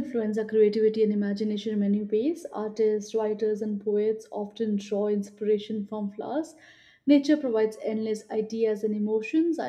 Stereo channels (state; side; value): identical; both; correlation 1.00